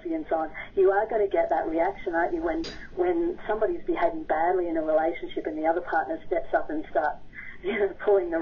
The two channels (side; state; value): both; identical; correlation 1.00